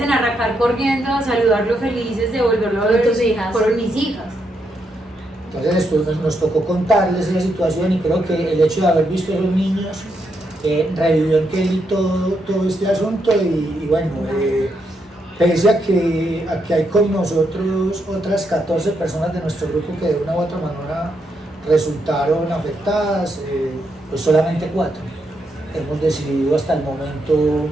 en arrancar corriendo a saludarlo felices de volverlo a ver tus hijas. Fueron mis hijas. Entonces después nos tocó contarles esa situación, y creo que el hecho de haber visto a los niños revivió en Kelly todo este asunto, y bueno, pese a que hay con nosotros otras 14 personas de nuestro grupo que de una u otra manera resultaron afectadas, pues solamente 4 hemos decidido hasta el momento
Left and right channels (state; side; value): normal; both; correlation 0.80